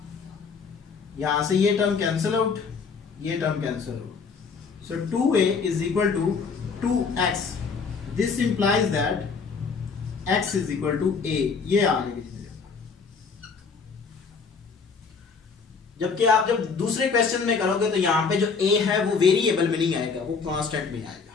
यहां से ये टर्म कैंसिल आउट, ये term cancel out. So 2a is equal to 2x. This implies that x is equal to a. ये आ गई। जबकि आप जब दूसरे क्वेश्चन में करोगे तो यहां पे जो a है वो वेरिएबल में नहीं आएगा, वो कांस्टेंट में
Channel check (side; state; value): right; quieter; 5.2 dB